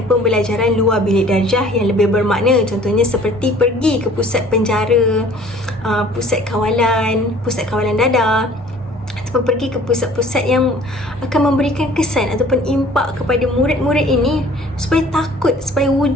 pembelajaran luar bilik darjah yang lebih bermakna. Contohnya seperti pergi ke pusat penjara, pusat kawalan dadah, ataupun pergi ke pusat-pusat yang akan memberikan kesan ataupun impak kepada murid-murid ini supaya takut, supaya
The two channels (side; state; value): both; normal; correlation 0.51